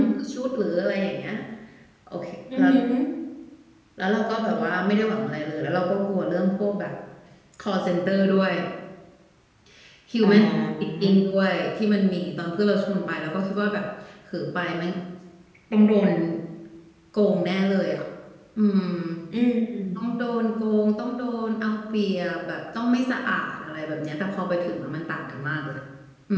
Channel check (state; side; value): identical; both; correlation 1.00